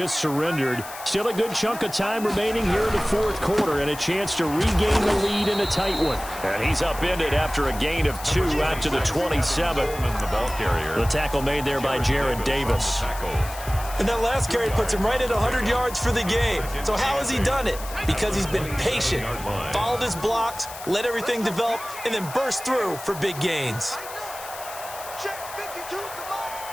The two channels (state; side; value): noise; left; hiss, 13 dB below the sound